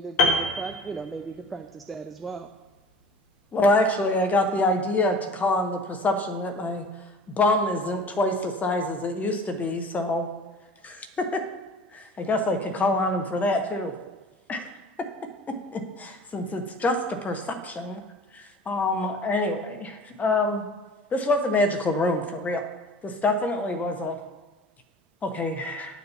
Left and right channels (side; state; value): both; normal; correlation 0.42